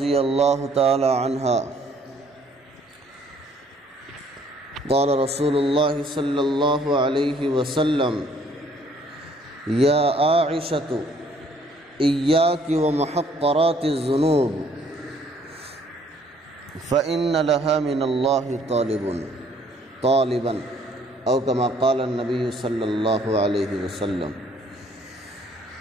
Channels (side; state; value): both; normal; correlation 0.61